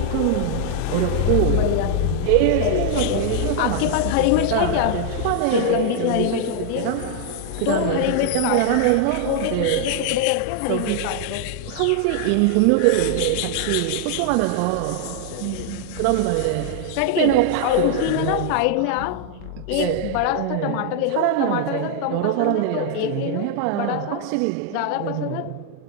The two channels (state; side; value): different; both; correlation 0.00